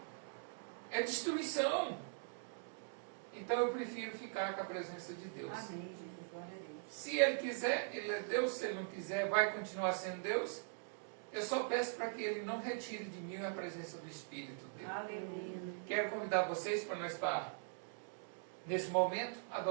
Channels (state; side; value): silent; left; digital silence